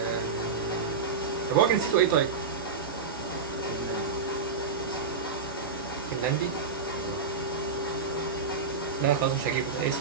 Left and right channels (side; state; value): left; quieter; 4.9 dB